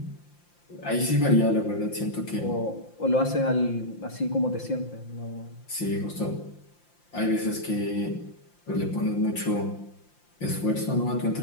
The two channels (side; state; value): right; late; 5.8 ms